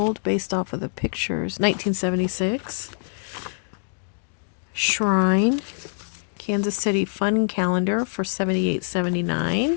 based off of the pictures. 1976. Shrine. Kansas City Fun Calendar for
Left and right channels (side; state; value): right; silent; digital silence